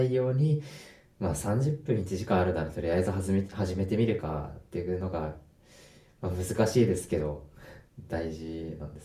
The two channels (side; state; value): both; identical; correlation 1.00